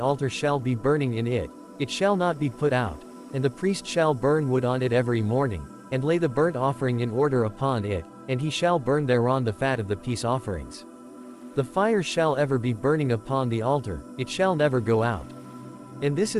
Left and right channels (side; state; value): both; identical; correlation 1.00